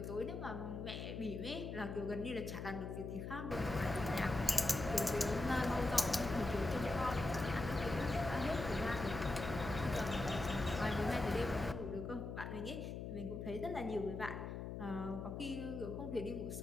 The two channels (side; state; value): left; noise; hum, 6 dB below the sound